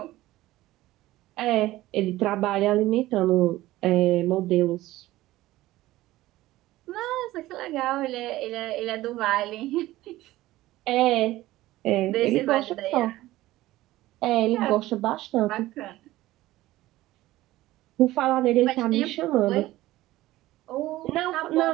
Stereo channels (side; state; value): left; quieter; 16.7 dB